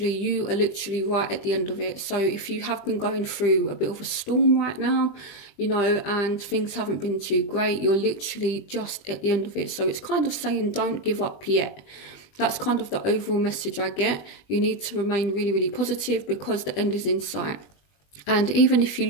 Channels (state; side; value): late; right; 20 ms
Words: you are literally right at the end of it. So if you have been going through a bit of a storm right now, you know, and things haven't been too great, you're literally just at the end of it. So it's kind of saying, don't give up yet. That's kind of the overall message I get. You need to remain really, really positive because the end is in sight. And even if you